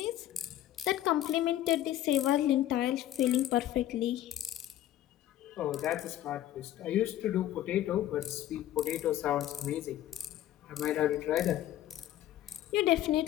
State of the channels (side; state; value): right; quieter; 12.9 dB